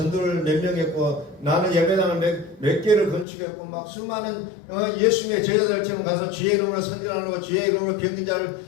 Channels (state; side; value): drops out; right; at 3.2 s